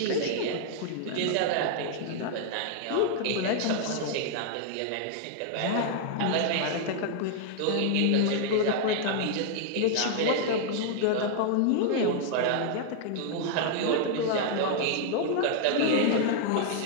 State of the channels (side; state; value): both; different; correlation 0.00